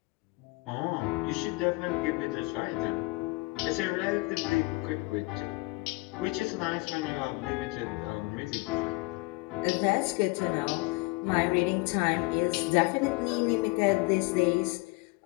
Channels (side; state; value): right; quieter; 25.6 dB